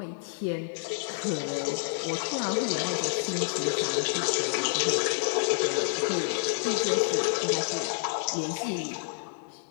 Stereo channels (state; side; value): silent; right; 59 dB below the other